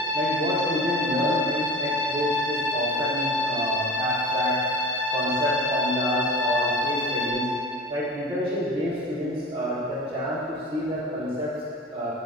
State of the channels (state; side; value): normal; both; correlation 0.35